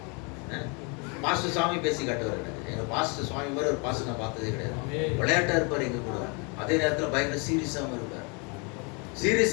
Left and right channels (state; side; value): quieter; right; 33.1 dB